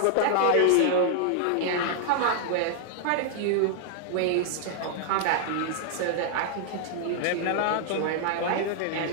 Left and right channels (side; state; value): both; different; correlation 0.00